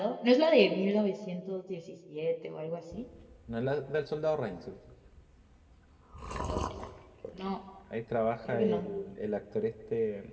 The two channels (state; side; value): identical; both; correlation 1.00